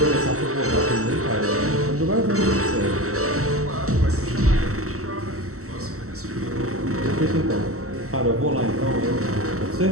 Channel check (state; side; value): late; left; 0.64 ms